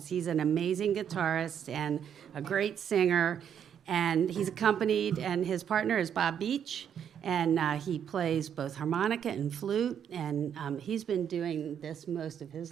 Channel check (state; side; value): quieter; left; 8.6 dB